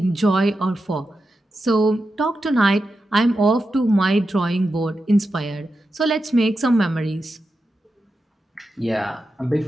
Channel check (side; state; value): both; normal; correlation 0.90